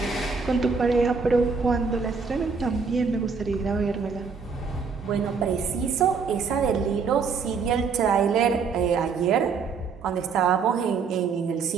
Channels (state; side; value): quieter; left; 5.3 dB